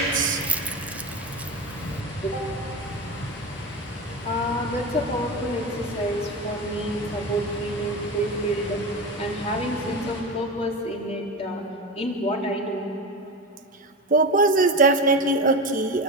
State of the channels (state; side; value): normal; both; correlation 0.24